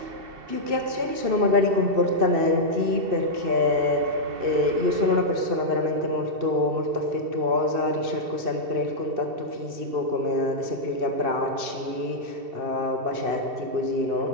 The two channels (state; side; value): late; left; 2.7 ms